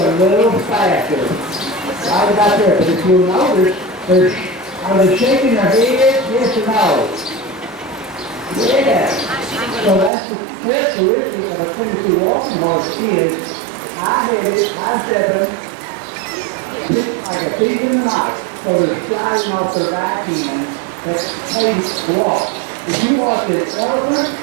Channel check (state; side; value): drops out; left; at 10.1 s